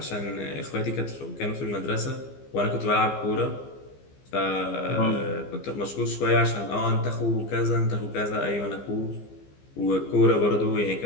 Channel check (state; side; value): late; right; 15 ms